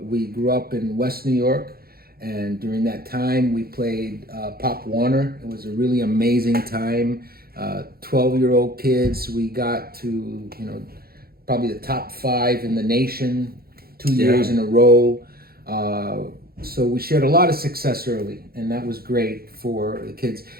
We grew up in West New York, and during that time we played Pop Warner. It was a really amazing time. 12-year-old kids, we got to, probably the top 5 in the nation 2 years in a row. So we shared a lot of success early, and that was great for the kids.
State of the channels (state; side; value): late; left; 0.44 ms